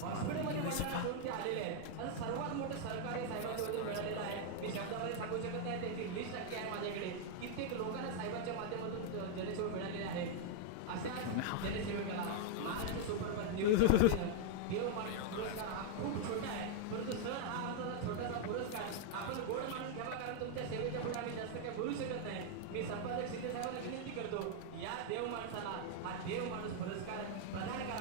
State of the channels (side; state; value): both; different; correlation 0.00